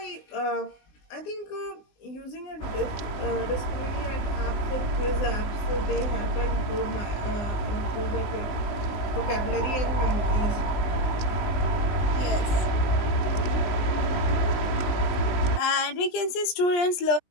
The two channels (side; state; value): right; late; 20 ms